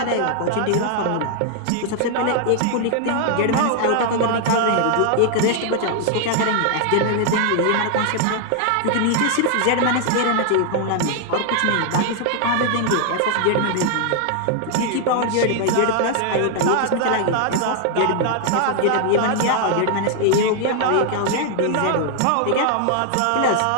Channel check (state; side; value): different; both; correlation 0.00